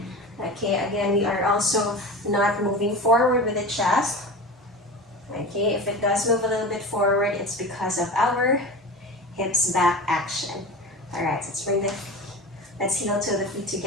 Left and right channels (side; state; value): both; normal; correlation 0.31